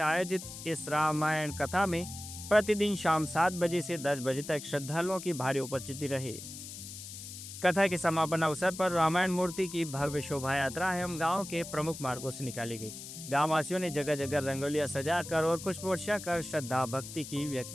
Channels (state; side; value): noise; left; hiss, 11 dB below the sound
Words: आयोजित इस रामायण कथा में प्रतिदिन शाम 7 बजे से 10 बजे तक श्रद्धालुओं की भारी उपस्थिति रही। कथा के समापन अवसर पर रामायण मूर्ति की भव्य शोभा यात्रा एवं गांव के प्रमुख मार्गों से निकाली गई। गांव वासियों ने जगह जगह रंगोलियां सजाकर और पुष्प वर्षा कर श्रद्धा भक्ति की